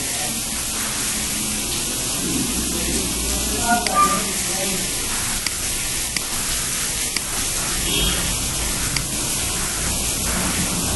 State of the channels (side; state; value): both; identical; correlation 1.00